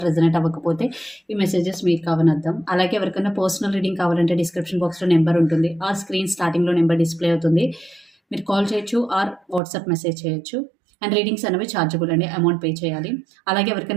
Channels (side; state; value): left; drops out; at 9.6 s